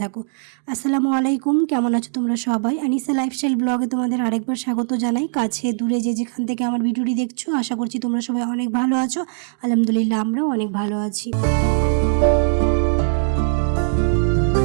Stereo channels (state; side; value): silent; left; digital silence